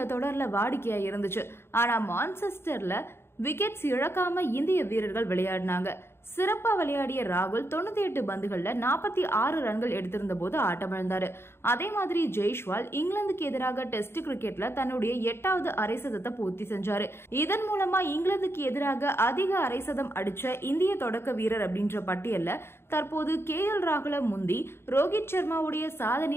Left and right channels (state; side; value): late; right; 0.12 ms